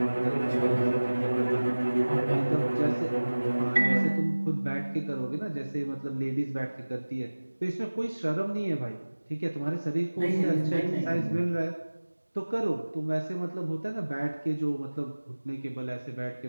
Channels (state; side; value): inverted; both; correlation -1.00